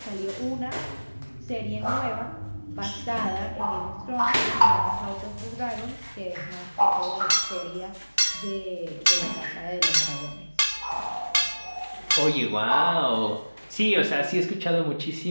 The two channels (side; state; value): both; inverted; correlation -1.00